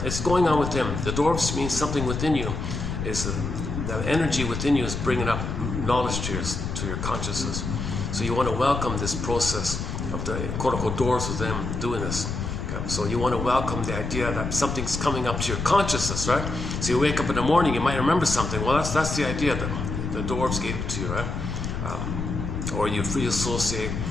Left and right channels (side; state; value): left; noise; rumble, 4 dB below the sound